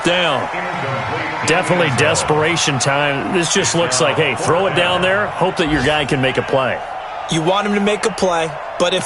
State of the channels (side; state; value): both; identical; correlation 1.00